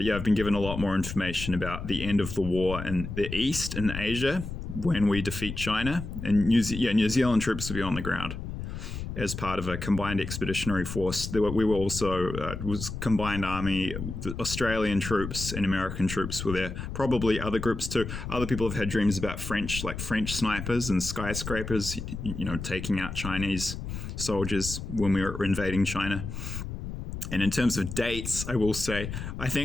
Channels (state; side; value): noise; left; rumble, 7 dB below the sound